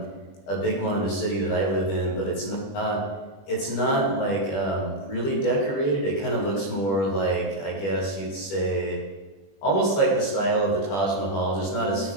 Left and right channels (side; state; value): right; late; 20 ms